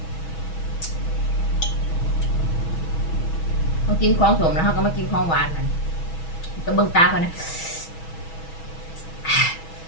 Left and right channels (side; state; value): right; late; 6.2 ms